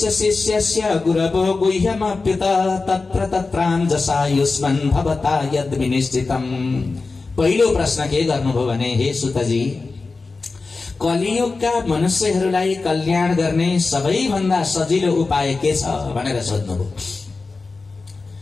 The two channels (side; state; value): right; quieter; 3.9 dB